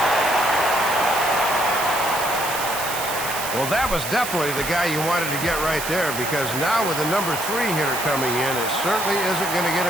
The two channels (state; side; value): noise; right; hiss, 6 dB below the sound